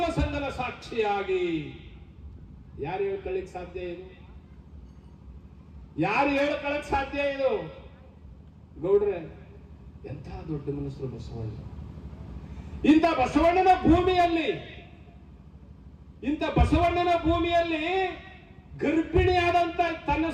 ಸಂಗನ ಸಾಕ್ಷಿಯಾಗಿ. ಯಾರು ಹೇಳ್ಕೊಳ್ಳಿಕ್ ಸಾಧ್ಯ ಇದು? ಯಾರು ಹೇಳ್ಕೊಳ್ಳಕ್ ಸಾಧ್ಯ ಇದು? ಗೌಡ್ರೆ, ಎಂಥ ದೊಡ್ಡ ಮನಸ್ಸರು ಬಸವಣ್ಣ. ಇಂಥ ಬಸವಣ್ಣನ ಭೂಮಿಯಲ್ಲಿ ಗರ್ಭಿಣಿಯಾದಂತ ತನ್ನ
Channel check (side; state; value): both; identical; correlation 1.00